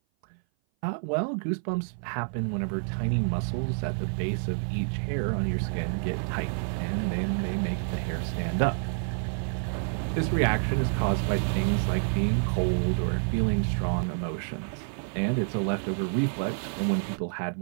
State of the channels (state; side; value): silent; left; 57 dB below the other